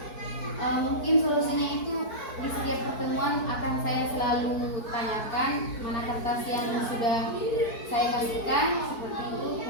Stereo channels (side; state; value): right; late; 4.5 ms